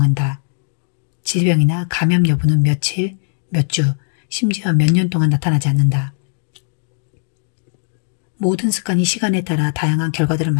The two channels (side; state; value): right; silent; digital silence